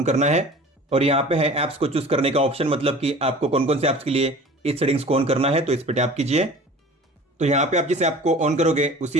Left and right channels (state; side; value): normal; both; correlation 0.42